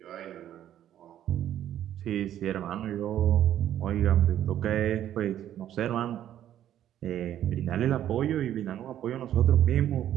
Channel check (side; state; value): left; quieter; 11.3 dB